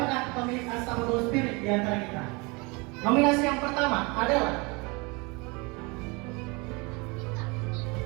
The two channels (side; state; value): left; quieter; 27.9 dB